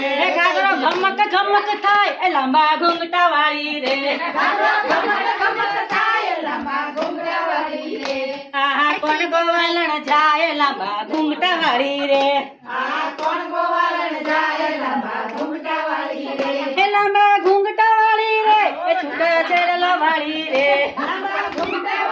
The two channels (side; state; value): both; identical; correlation 1.00